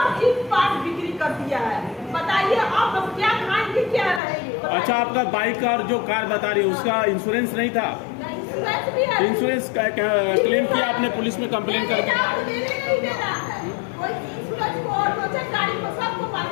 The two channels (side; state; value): right; drops out; at 4.2 s